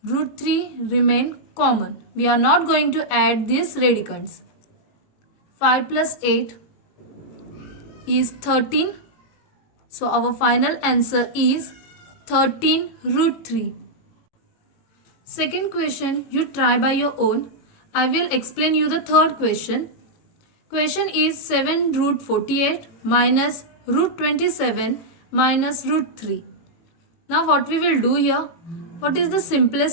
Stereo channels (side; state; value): right; late; 18 ms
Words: root 3 remain common. We are not going to add these radicands. 5 plus 8 is 13. So our final answer is 13 root 3. Second question, you try by your own. I will explain you the third question. Question is 7 root 48 minus root 27 minus root 3. Now what we will do here? What is the